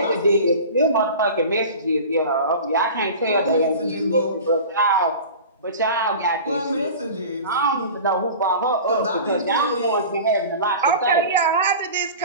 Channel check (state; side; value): inverted; both; correlation -0.36